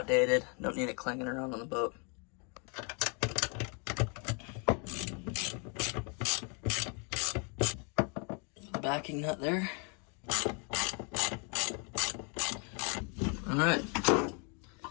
Don't need it clanging around on the boat. The backing nut there. Alright.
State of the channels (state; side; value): quieter; right; 35.9 dB